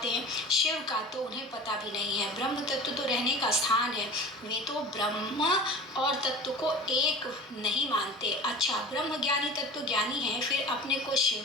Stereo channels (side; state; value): both; normal; correlation 0.36